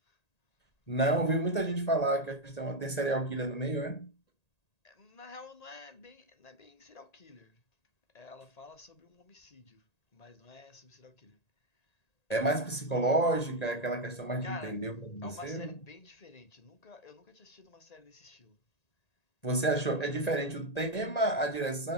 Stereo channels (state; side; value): late; right; 1.8 ms